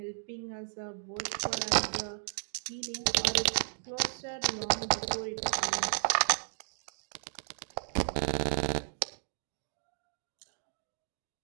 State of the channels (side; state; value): left; silent; 55 dB below the other